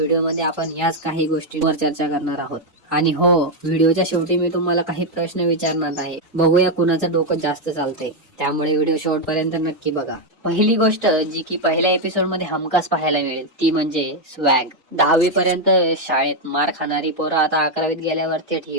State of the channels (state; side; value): normal; both; correlation 0.02